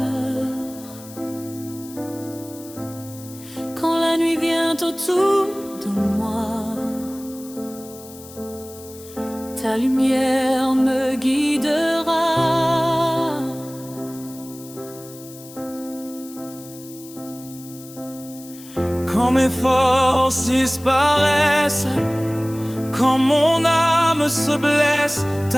Quand la nuit vient autour de moi, ta lumière me guidera. Quand mes forces disparaissent, quand mon âme se blesse,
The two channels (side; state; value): left; noise; hiss, 18 dB below the sound